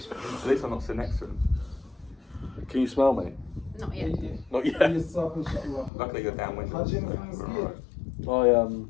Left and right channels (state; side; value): drops out; right; at 5.9 s